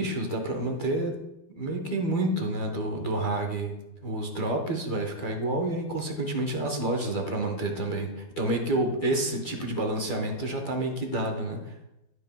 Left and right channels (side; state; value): right; late; 12 ms